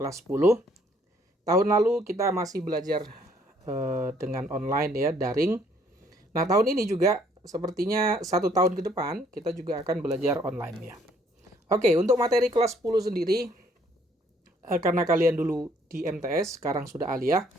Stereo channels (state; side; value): normal; both; correlation 0.63